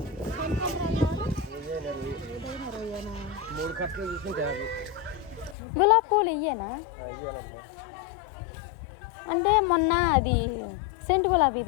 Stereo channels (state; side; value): drops out; right; at 5.6 s